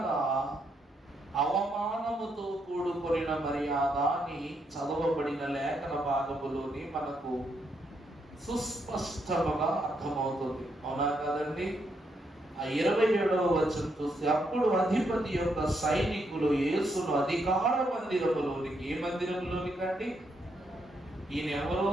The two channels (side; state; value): both; normal; correlation 0.77